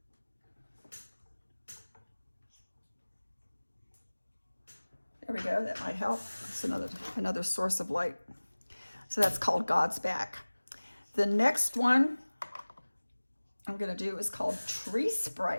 There we go, that might help. It's another source of light. So that's called God's Back. The next one I'm gonna do is called Tree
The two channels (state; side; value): inverted; both; correlation -1.00